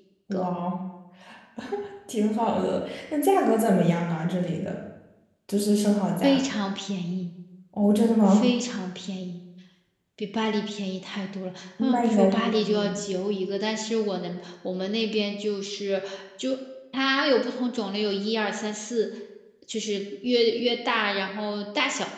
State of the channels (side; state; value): both; identical; correlation 1.00